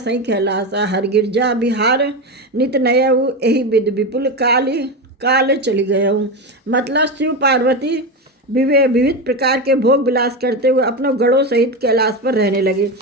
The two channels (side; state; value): both; normal; correlation 0.17